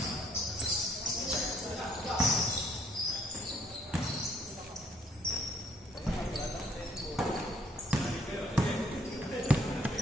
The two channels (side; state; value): both; normal; correlation 0.65